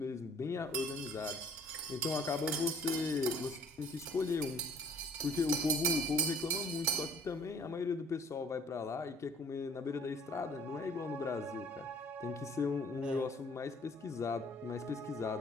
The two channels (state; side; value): normal; both; correlation 0.54